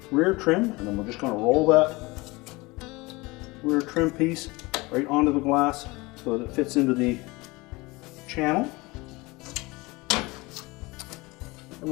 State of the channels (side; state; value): right; quieter; 23.4 dB